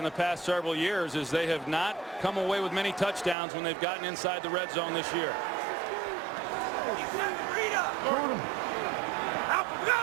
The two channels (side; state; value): left; drops out; at 3.4 s